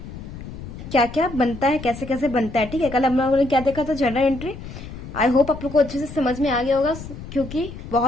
क्या क्या बनता है, कैसे कैसे बनता है। ठीक है, कल हम लोगों ने क्या देखा था, जनरल एंट्री। आई होप आप लोग को अच्छे से समझ में आ गया होगा क्योंकि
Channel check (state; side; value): noise; left; rumble, 12 dB below the sound